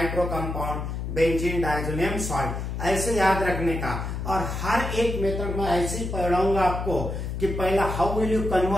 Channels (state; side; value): noise; left; hum, 4 dB below the sound